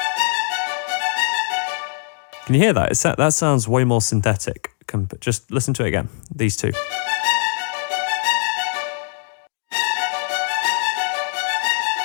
Can you hear that? That sounds way more synthetic. Just listen to it again, these two.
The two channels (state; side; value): silent; right; 59 dB below the other